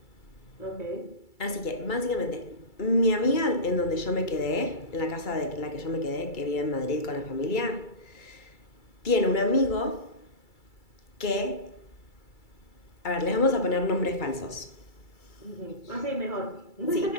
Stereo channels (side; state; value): right; late; 2.3 ms